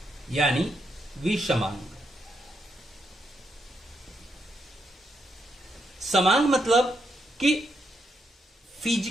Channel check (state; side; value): normal; both; correlation 0.80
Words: यानी विषमांग। समांग मतलब कि